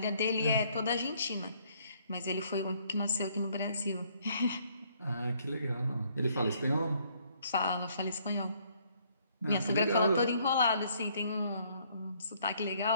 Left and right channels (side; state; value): both; inverted; correlation -0.65